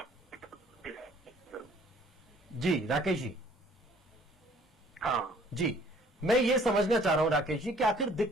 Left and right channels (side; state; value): both; normal; correlation 0.57